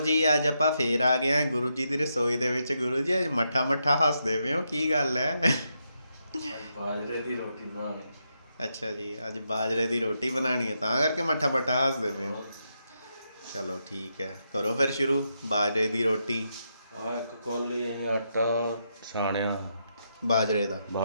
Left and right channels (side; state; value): both; inverted; correlation -0.82